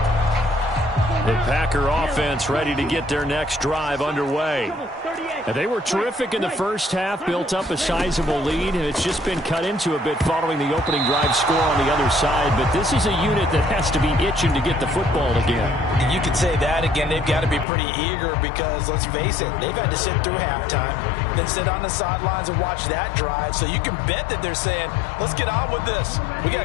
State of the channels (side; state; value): right; drops out; at 17.7 s